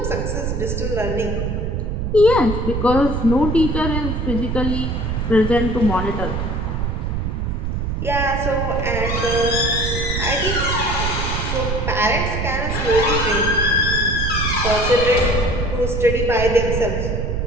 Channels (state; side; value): noise; right; rumble, 2 dB below the sound